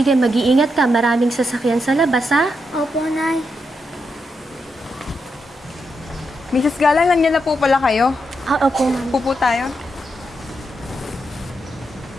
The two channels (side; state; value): both; normal; correlation 0.83